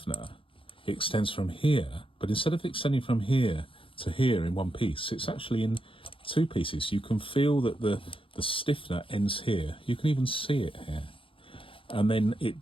extends from here, but instead of extending from here to here in one piece, it's actually in two pieces. You can feel that the stiffener ends here, you can even see it here, and then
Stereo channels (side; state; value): right; late; 0.26 ms